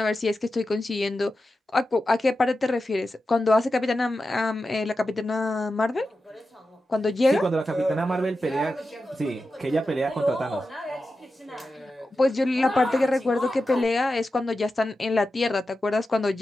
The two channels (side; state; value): both; normal; correlation 0.91